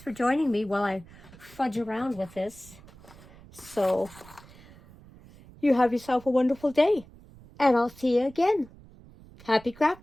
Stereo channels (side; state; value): right; noise; rumble, 22 dB below the sound